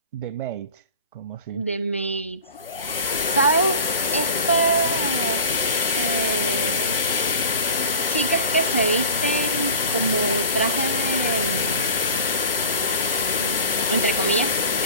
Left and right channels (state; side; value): inverted; both; correlation -0.36